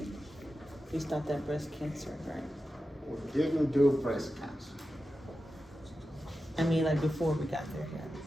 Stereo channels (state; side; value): normal; both; correlation 0.92